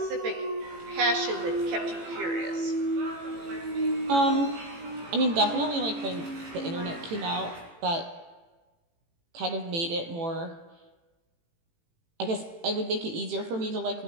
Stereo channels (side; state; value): left; late; 18 ms